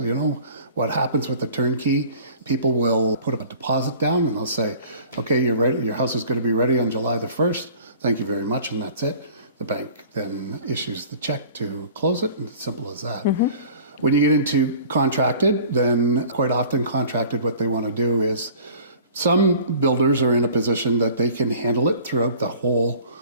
You know, what happens with the turnkey, people will put a deposit down and they'll say, okay, you're ready, your house is going to be ready on July the 1st. Thank you very much, and that's it. The bank then issues the check to close it, and it's simple as that. Mm-hmm. When you get into contracted, then quite often contracted, what they want to do is, some builders are in a position that they can handle it throughout the whole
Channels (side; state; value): both; inverted; correlation -0.47